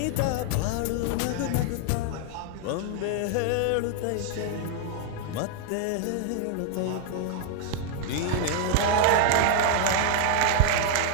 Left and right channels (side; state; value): both; different; correlation 0.00